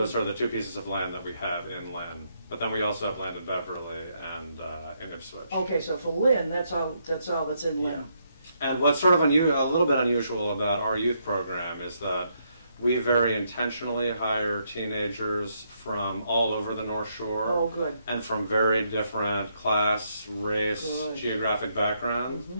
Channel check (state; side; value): inverted; both; correlation -0.76